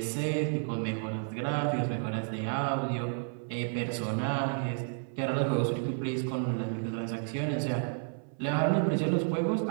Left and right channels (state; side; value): silent; left; 57 dB below the other